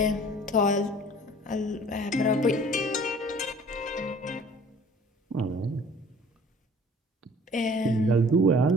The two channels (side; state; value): both; normal; correlation 0.50